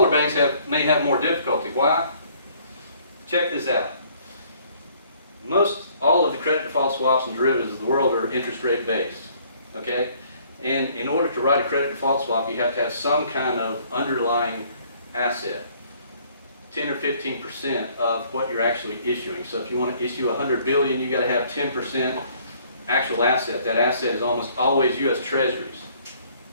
banks may have more difficulty. Why? Check this out. All of the credit default swaps and derivatives of the world are interest rate based, okay? And in order to write a credit default swap, you have to have some kind of underlying asset, 10 or 15% of what you're actually issuing. So if you want to issue 100 billion, you got to have 10% actual asset. That asset is almost always U.S. Treasuries.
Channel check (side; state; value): both; inverted; correlation -0.60